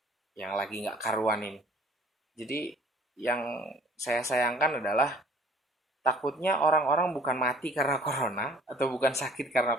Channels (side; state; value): both; normal; correlation 0.51